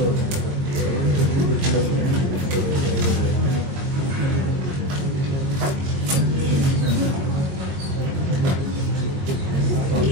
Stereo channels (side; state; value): left; late; 21 ms